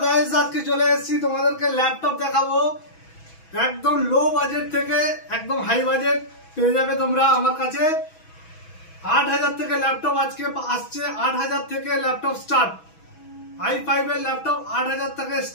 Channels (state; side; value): late; right; 6.1 ms